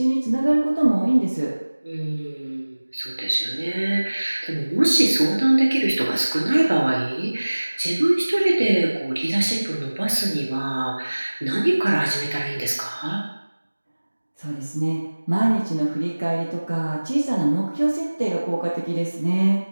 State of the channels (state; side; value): inverted; both; correlation -1.00